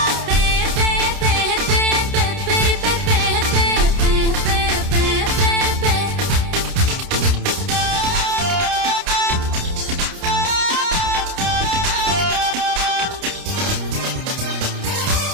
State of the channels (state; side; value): late; left; 29 ms